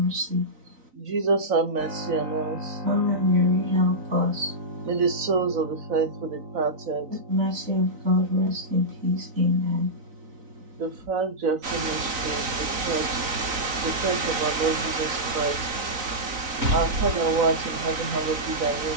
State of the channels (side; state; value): left; late; 3.9 ms